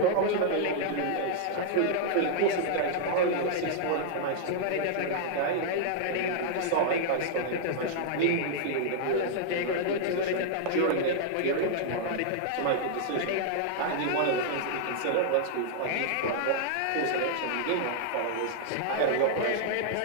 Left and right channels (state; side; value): different; both; correlation -0.01